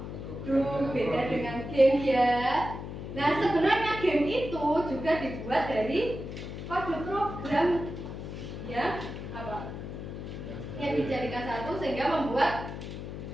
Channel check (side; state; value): left; noise; hum, 8 dB below the sound